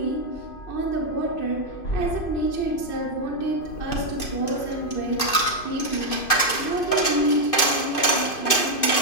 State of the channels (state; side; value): late; right; 2.5 ms